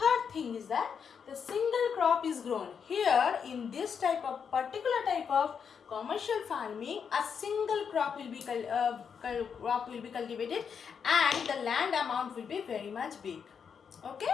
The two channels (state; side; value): quieter; right; 6.8 dB